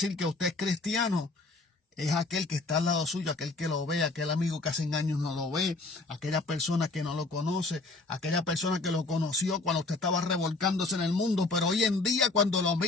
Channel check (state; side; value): quieter; right; 3.4 dB